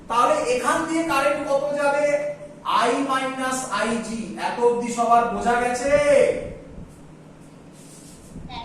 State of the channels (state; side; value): identical; both; correlation 1.00